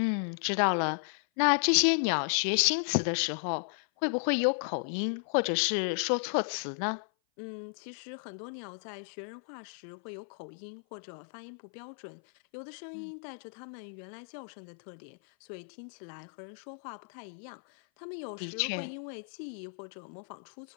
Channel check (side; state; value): right; silent; 55 dB below the other